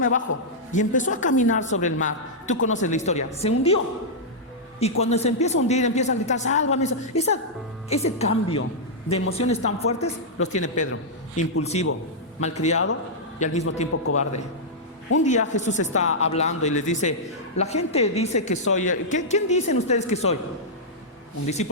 bajo. Y empezó a caminar sobre el mar. Tú conoces la historia, se hundió. Y cuando se empieza a hundir, empieza a gritar, sálvame. Ese cambio de emociones tan fuertes los tiene Pedro. Impulsivo, malcriado y al mismo tiempo cobarde. Un día Jesús está hablando y les dice, la gente dice que soy, ¿quién dicen ustedes que soy? Un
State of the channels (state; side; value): normal; both; correlation -0.09